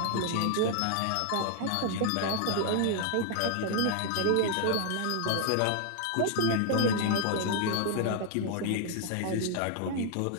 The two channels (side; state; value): both; different; correlation 0.00